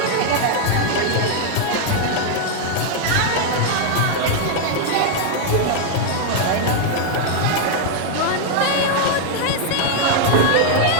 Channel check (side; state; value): both; different; correlation 0.00